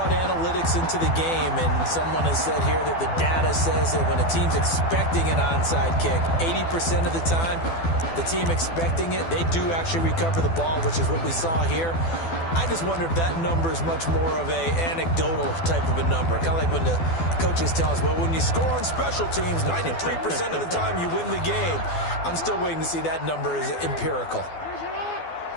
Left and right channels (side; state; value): right; late; 12 ms